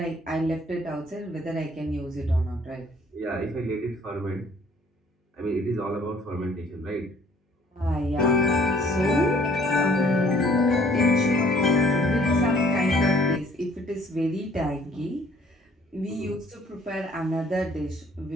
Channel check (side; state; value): both; normal; correlation 0.59